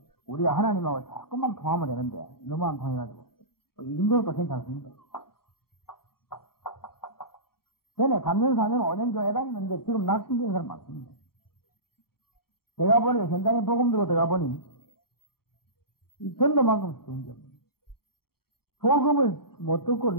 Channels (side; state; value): right; late; 0.93 ms